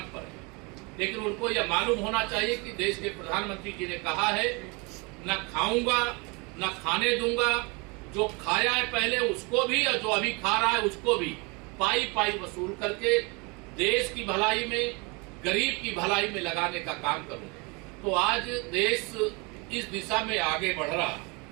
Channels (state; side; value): quieter; left; 29.4 dB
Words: पर है। लेकिन उनको यह मालूम होना चाहिए कि देश के प्रधानमंत्री जी ने कहा है, न खाऊंगा न खाने दूंगा, जो खाया है पहले उसको भी और जो अभी खा रहा है उसको भी पाई पाई वसूल करके देश की भलाई में, गरीब की भलाई में लगाने का काम करूंगा। तो आज देश इस दिशा में आगे बढ़ रहा है।